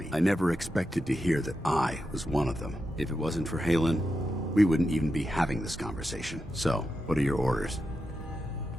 I never expected to hear that I was one of them. If it wasn't for Halen, we wouldn't even be having this conversation. So, what are your orders?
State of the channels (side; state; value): both; normal; correlation 0.88